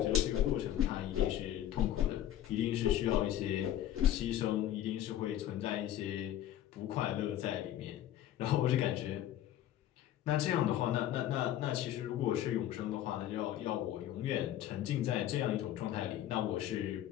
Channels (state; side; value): quieter; right; 12.2 dB